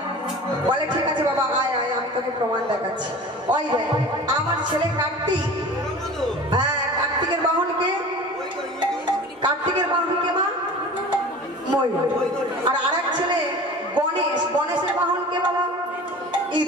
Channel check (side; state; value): both; normal; correlation 0.39